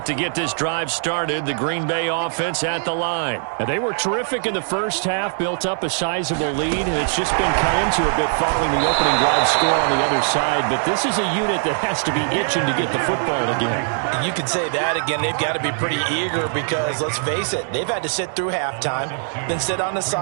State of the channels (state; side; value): silent; left; digital silence